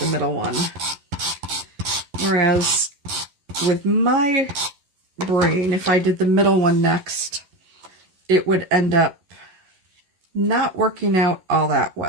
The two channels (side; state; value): left; late; 11 ms